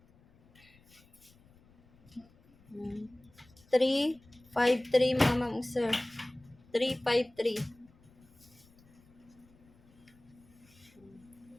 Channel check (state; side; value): noise; left; rumble, 28 dB below the sound